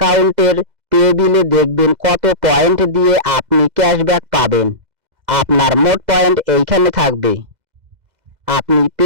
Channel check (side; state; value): left; late; 2.0 ms